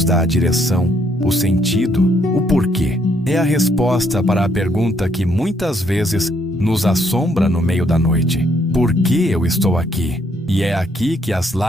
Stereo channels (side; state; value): both; normal; correlation 0.70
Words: dá a direção, o sentido, o porquê. É a resposta para a pergunta que muitas vezes nos assombra no meio da noite. Por que eu estou aqui? E é aqui que as